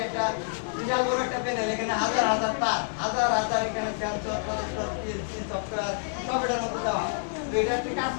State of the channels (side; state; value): right; silent; digital silence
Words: একটা বিশাল বড় একটা প্যানেল, এখানে হাজার হাজার তার, হাজার হাজার এখানে সেন্সর, প্রসেসর, পিএলসি, সফটওয়্যার সব এটার মধ্যে দেওয়া। তো এটা একটি কাজ